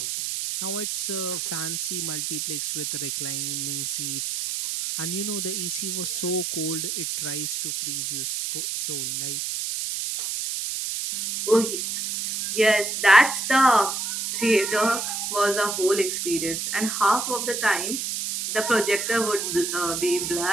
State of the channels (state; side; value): noise; right; hiss, 2 dB below the sound